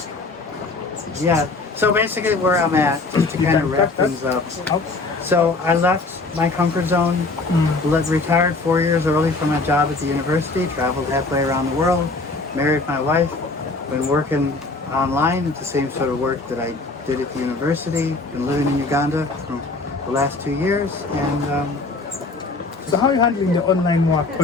Yeah. So basically, where I'm at, just to kind of wrap things up. So I left my comfort zone, retired 4 years early from my job at the university, traveled halfway around the world, married my wife, been working online. It's the same sort of work that I did at the university. Been living in Uganda for the last 2 years, and so how are you handling the online work?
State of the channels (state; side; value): quieter; right; 3.5 dB